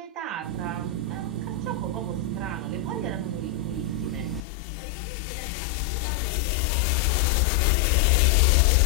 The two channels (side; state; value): right; drops out; at 4.5 s